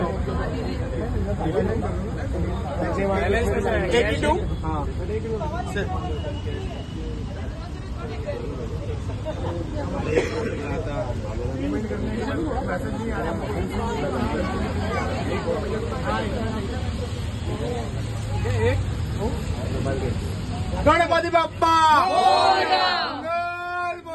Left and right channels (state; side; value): identical; both; correlation 1.00